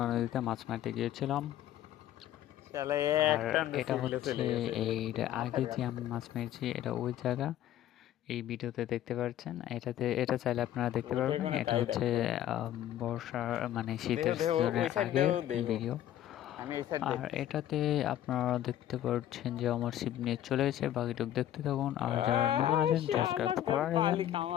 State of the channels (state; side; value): quieter; right; 12.0 dB